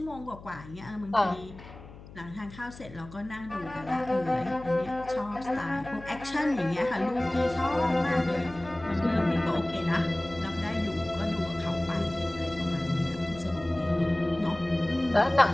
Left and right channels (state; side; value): noise; left; hum, 17 dB below the sound